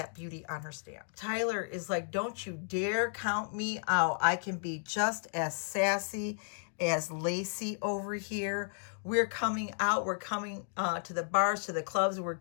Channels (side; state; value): right; silent; digital silence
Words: beauty on her stand. Tyler is like, don't you dare count me out. I can be just as sassy as Lacey over here. We're coming out. We're coming to the bars, to the clubs. We're